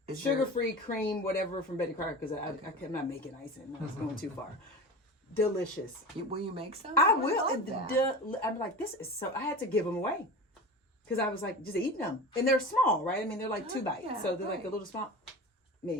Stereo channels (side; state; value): both; normal; correlation 0.31